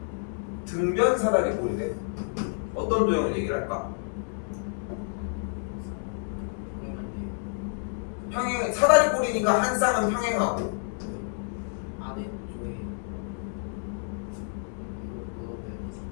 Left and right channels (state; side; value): silent; right; digital silence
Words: 등변사다리꼴이래. 어떤 도형을 얘기를 할까? 평행 사다리꼴이니까 한 쌍은 평행하고 안에